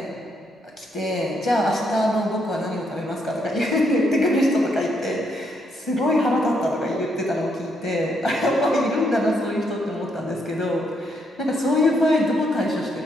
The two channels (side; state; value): both; normal; correlation 0.75